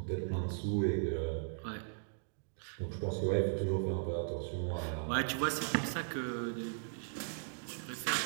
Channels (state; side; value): silent; left; digital silence